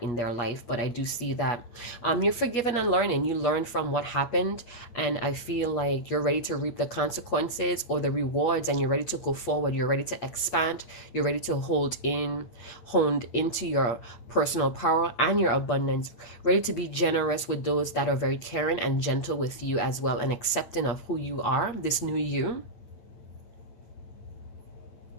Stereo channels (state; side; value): late; right; 8.8 ms